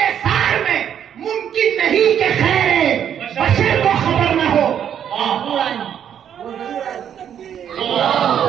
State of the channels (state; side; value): quieter; left; 9.1 dB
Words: سار میں، ممکن نہیں کہ خیر بشر کو خبر نہ ہو۔